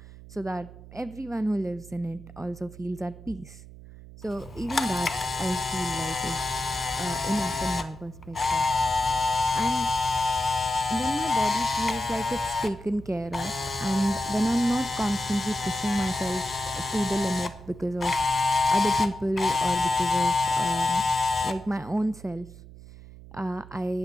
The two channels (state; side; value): noise; right; hum, 17 dB below the sound